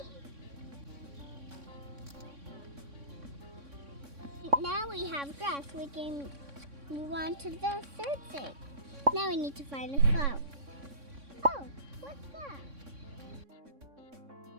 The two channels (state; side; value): late; left; 3.6 ms